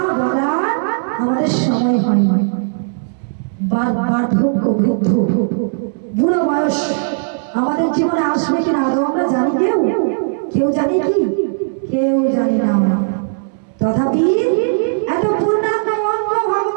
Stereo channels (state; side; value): silent; left; digital silence